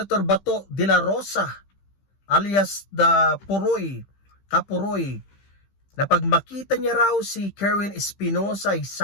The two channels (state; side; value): late; right; 15 ms